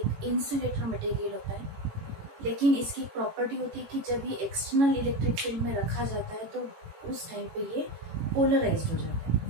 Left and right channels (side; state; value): left; late; 18 ms